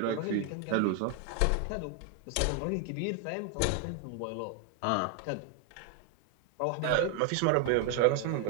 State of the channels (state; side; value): different; both; correlation 0.01